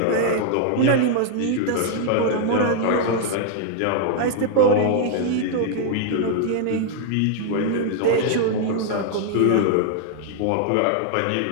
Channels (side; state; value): both; different; correlation 0.00